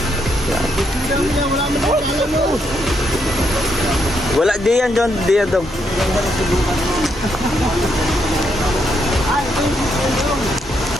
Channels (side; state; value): both; normal; correlation 0.77